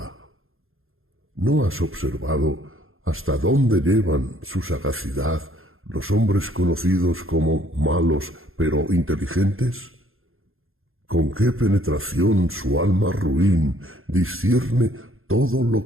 ¿No has observado hasta dónde llevan su sagacidad los hombres conocidos como malos pero inteligentes? ¿Con qué penetración su alma ruin discierne todo lo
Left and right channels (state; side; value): late; left; 0.60 ms